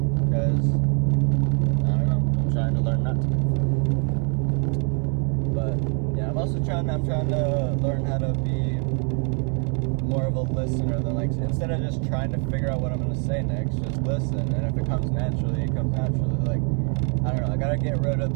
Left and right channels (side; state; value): left; quieter; 39.7 dB